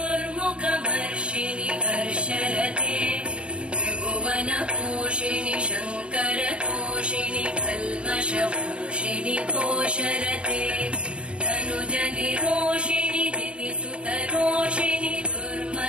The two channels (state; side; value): late; left; 0.056 ms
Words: हर्षरते त्रिभुवनपोषिणि शङ्करतोषिणि कल्मषपोषिणि घोषरते तनुजनिरोषिणि दिविसुतरोषिणि